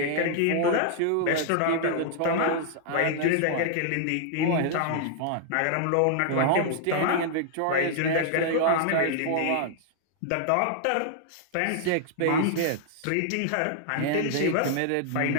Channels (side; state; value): both; different; correlation -0.01